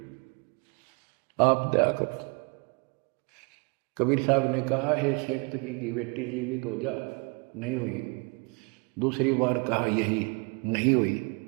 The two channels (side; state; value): left; quieter; 33.2 dB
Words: आप दया करो। कबीर साहब ने कहा हे शेख तकी की बेटी जीवित हो जा, नहीं हुई। दूसरी बार कहा यही, नहीं हुई।